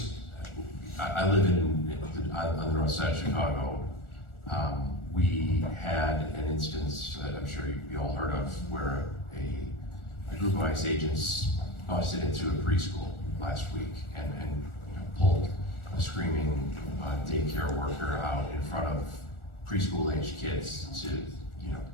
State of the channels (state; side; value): late; right; 1.4 ms